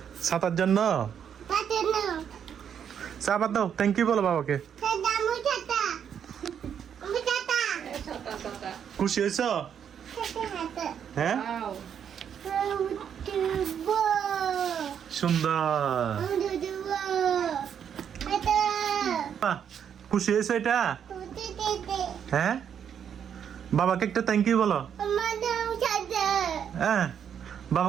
ছাতার জন্য। চাপাত দাও, থ্যাংক ইউ বলো বাবাকে। খুশি হয়েছ? হ্যাঁ, সুন্দর। খুশি হয়েছে এটা? হ্যাঁ, বাবাকে একটা থ্যাংক ইউ বলো। হ্যাঁ,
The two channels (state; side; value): quieter; left; 8.3 dB